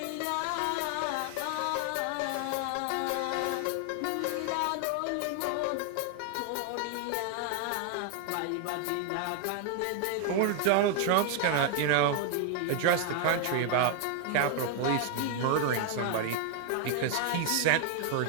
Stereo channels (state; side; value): different; both; correlation 0.00